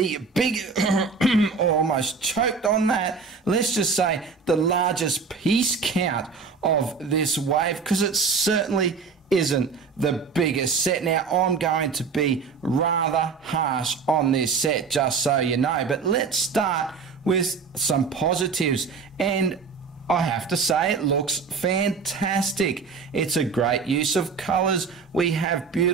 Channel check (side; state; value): left; quieter; 5.1 dB